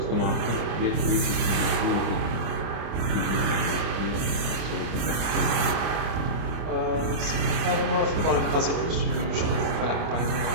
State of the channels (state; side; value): late; left; 25 ms